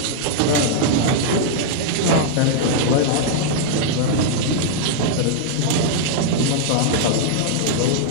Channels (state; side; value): different; both; correlation -0.01